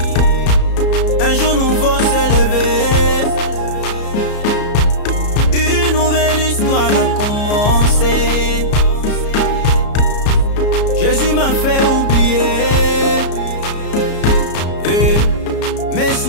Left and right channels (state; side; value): late; right; 34 ms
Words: Un jour nouveau s'est levé. Une nouvelle histoire a commencé. Jésus m'a fait oublier mes